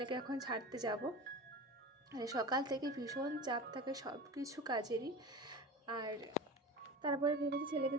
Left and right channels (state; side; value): normal; both; correlation 0.31